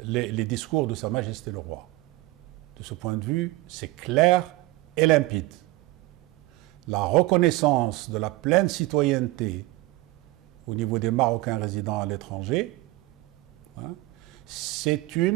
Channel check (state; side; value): quieter; left; 19.9 dB